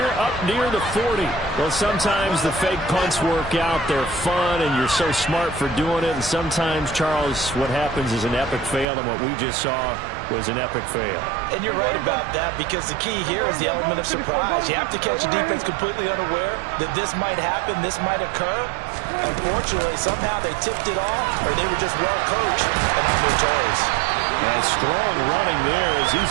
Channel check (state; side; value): drops out; left; at 8.8 s